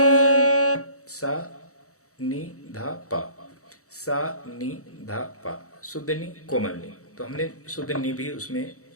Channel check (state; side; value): late; right; 0.65 ms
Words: सा नी धा पा, सा नी धा पा, शुद्ध नी कोमल नी। तो हमने शुद्ध नी भी उसमें